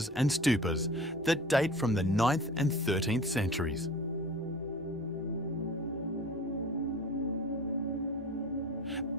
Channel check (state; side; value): normal; both; correlation 0.40